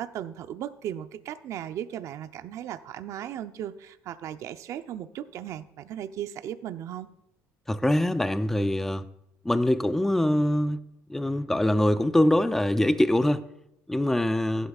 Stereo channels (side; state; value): both; normal; correlation 0.94